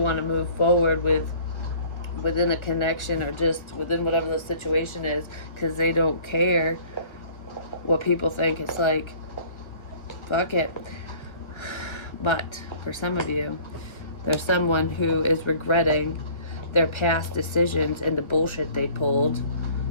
to move forward within a connection or just within whatever the situation is, because they don't care what people think. It's like, fuck it. But for some of you, there's someone who is regretting their past decisions and the bullshit they pulled,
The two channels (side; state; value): right; late; 1.3 ms